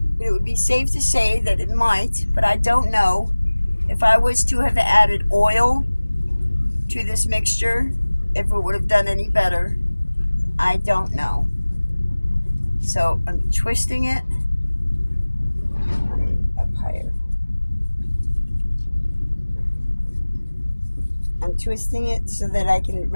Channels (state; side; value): inverted; both; correlation -1.00